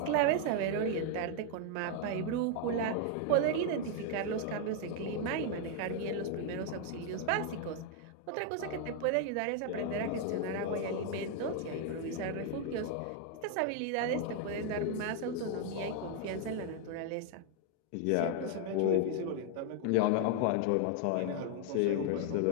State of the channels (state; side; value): different; both; correlation 0.00